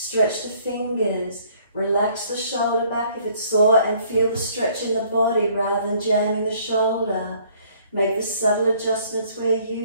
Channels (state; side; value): inverted; both; correlation -0.60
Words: the fingers. Relax the shoulder back if it's sore and feel the stretch in the body rather than jamming the shoulder. Make the subtle adjustments where